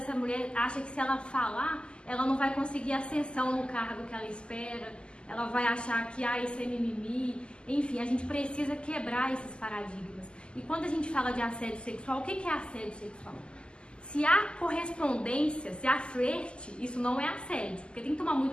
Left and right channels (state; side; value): late; right; 0.050 ms